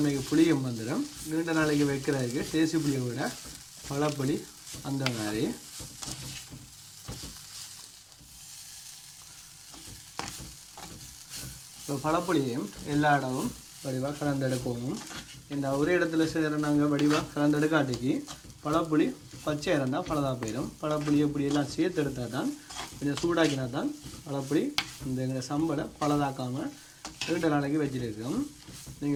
புளியும் வந்துடும். நீண்ட நாளைக்கு வைக்கிறதுக்கு தேசி புளியை விட பழப்புளி அந்த மாதிரி. இப்போ பழப்புளியையும் எல்லா இடமும் வடிவாக கலந்தெடுக்கவும். இந்த ஒரு இடத்துல செய்கிற நாங்கள் வடிவாக கலந்தெடுக்காட்டிக்கு பழப்புளி பச்சை இருந்தால் பழதாக போயிடும். பழப்புளி இப்படி எல்லாம் சேர்த்து எடுத்தால் தான் கொஞ்சம் சூடாக்கினா தான் பழப்புளி இந்த எங்களை சம்பளை பழதாக்காமல் 2 நாளைக்கு வச்சுருக்கோம்.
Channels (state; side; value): identical; both; correlation 1.00